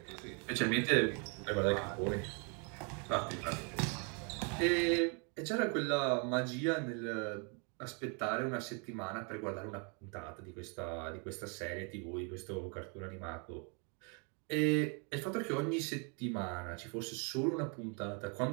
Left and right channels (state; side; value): quieter; left; 36.1 dB